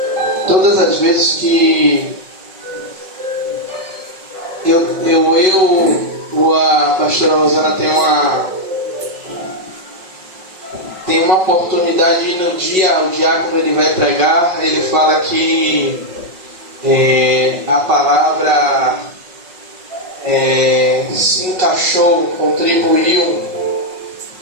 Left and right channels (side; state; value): left; late; 5.4 ms